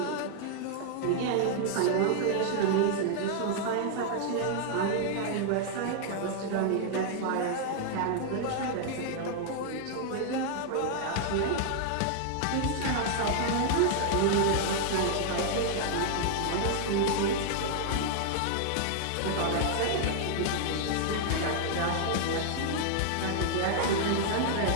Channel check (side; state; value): both; different; correlation 0.00